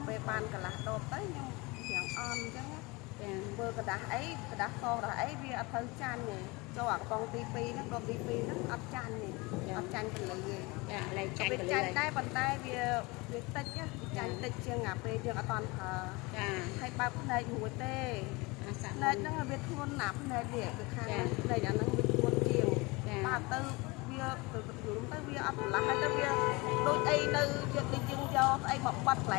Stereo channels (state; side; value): quieter; right; 25.0 dB